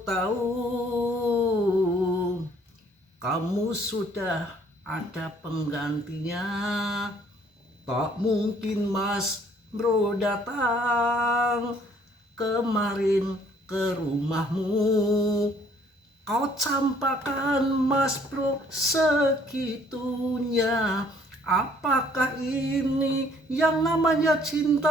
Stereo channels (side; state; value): both; normal; correlation 0.61